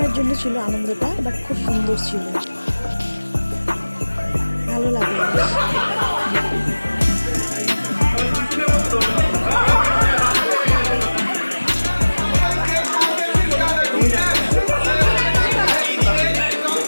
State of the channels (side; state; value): both; inverted; correlation -1.00